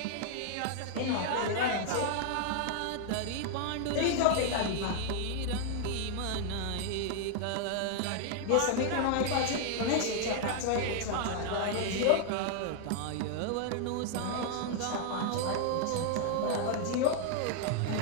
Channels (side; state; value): both; different; correlation 0.00